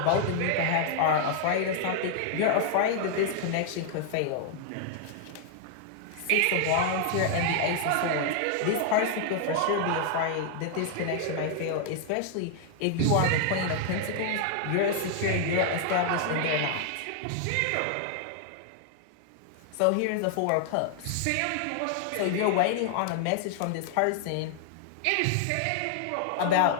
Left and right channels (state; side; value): different; both; correlation 0.00